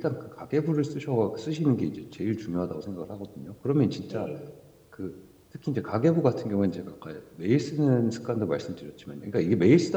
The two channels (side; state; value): both; identical; correlation 1.00